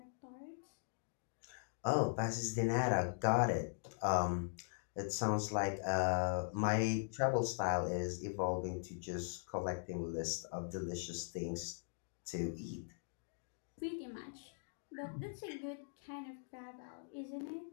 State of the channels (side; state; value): right; silent; digital silence